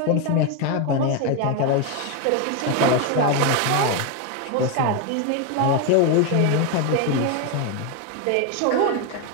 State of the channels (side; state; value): both; different; correlation 0.02